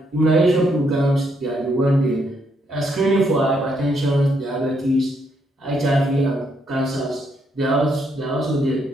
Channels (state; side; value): normal; both; correlation 0.75